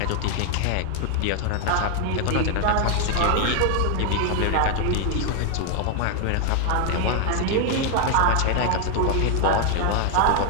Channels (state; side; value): different; both; correlation 0.00